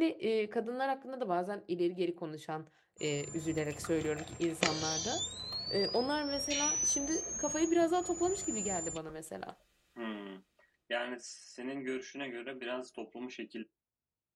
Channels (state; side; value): identical; both; correlation 1.00